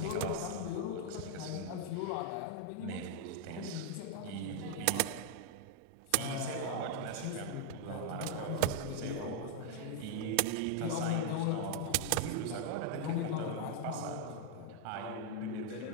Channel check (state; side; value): different; both; correlation 0.00